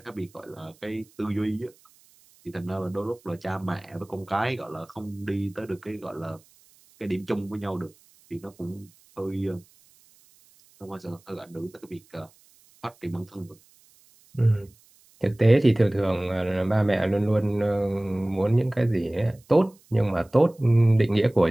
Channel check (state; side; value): noise; right; hiss, 30 dB below the sound